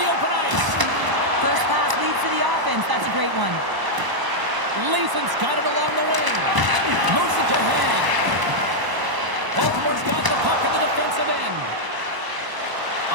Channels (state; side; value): late; left; 1.0 ms